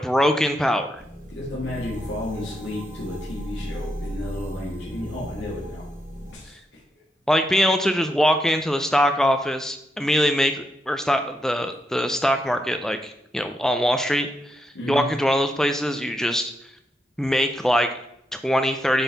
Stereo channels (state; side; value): normal; both; correlation 0.81